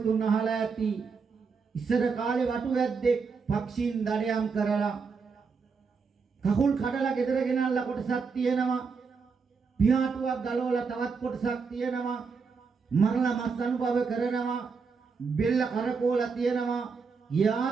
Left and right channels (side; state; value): left; quieter; 5.2 dB